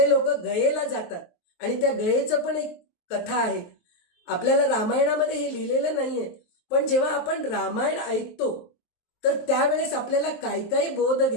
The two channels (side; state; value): right; late; 23 ms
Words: लोक गयेला जातात. आणि त्या गयेचं पण एक कथा आहे. आपल्याला रामायणामध्ये हे लिहिलेलं नाहीये, पण जेव्हा आपण रामायण ऐकतो तर त्यावेळेस आपल्याला काही काही बोध